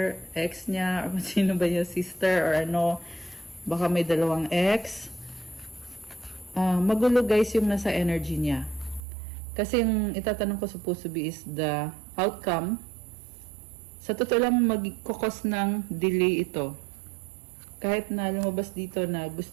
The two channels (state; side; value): drops out; left; at 9.0 s